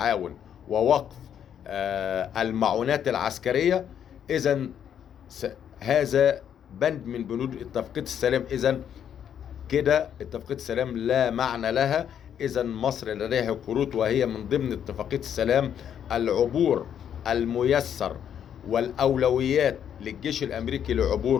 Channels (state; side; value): quieter; right; 9.0 dB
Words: ووقف المعونات العسكرية، إذن هذا بند من بنود اتفاقية السلام. إذن كده اتفاقية السلام لا معنى لها. إذن مصر لديها كروت، وهي من ضمن اتفاقية السلام العبور الميسر والأولويات للجيش الأمريكي